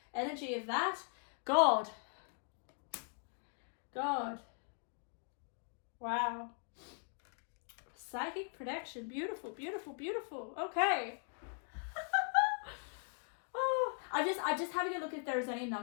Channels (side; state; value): right; silent; 51 dB below the other